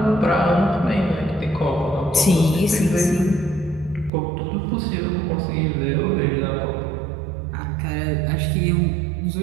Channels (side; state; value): left; drops out; at 4.1 s